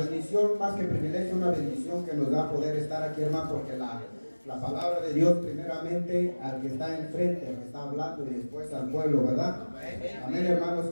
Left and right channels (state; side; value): inverted; both; correlation -1.00